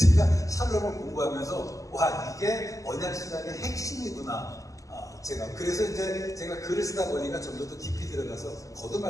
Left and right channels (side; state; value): right; late; 0.16 ms